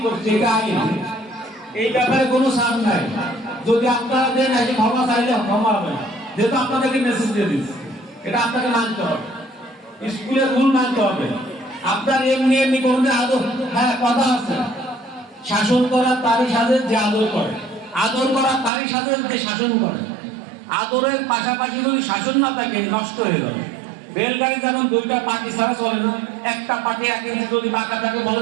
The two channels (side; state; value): left; drops out; at 18.7 s